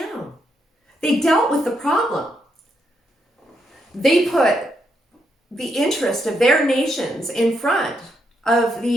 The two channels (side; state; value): both; normal; correlation 0.79